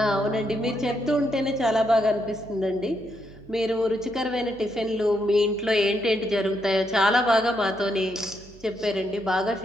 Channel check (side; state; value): right; noise; hum, 22 dB below the sound